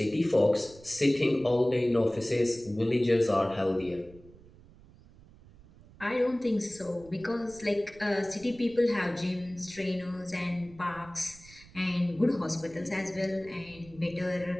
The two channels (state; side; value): noise; right; rumble, 23 dB below the sound